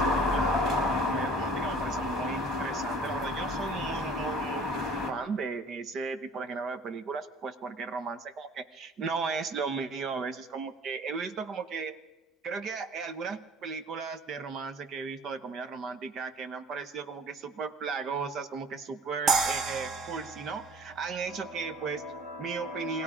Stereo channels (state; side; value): normal; both; correlation 0.49